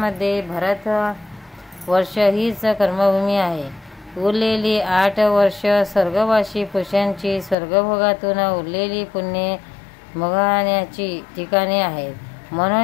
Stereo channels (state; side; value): drops out; right; at 7.6 s